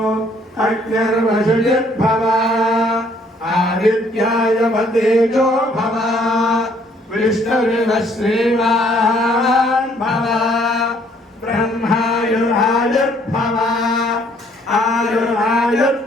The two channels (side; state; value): both; normal; correlation 0.64